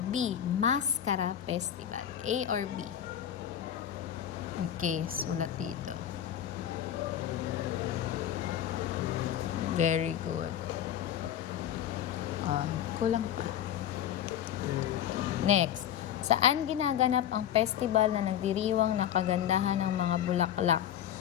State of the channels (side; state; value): right; quieter; 10.4 dB